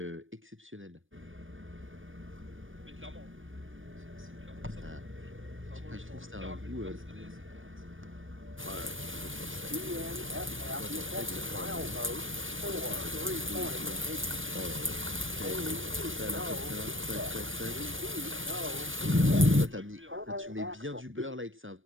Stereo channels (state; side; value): late; left; 0.57 ms